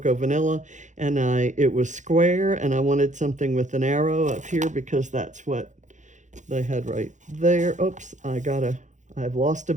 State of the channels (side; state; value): left; late; 0.35 ms